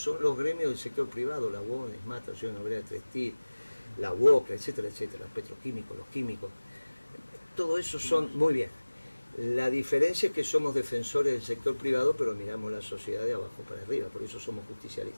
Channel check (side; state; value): both; inverted; correlation -1.00